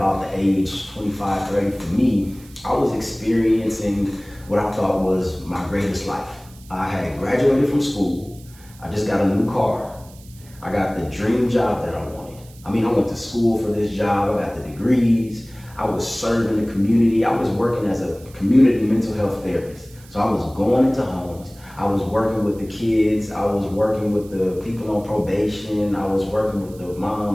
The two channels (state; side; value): noise; right; hiss, 24 dB below the sound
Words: the age 25, 30, for me, I was experiencing what I thought was my greatest life. I had graduated from school. I just got a new car. I got the dream job that I wanted. I went to school for this job. I got the degrees. I was serving the community. I was working as a community mental health therapist. So I was going into homes. I was working with the kids. I was working with the people on probation. I was working with the